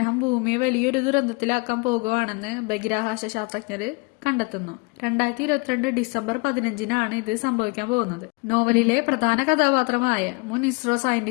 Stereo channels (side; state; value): right; quieter; 29.4 dB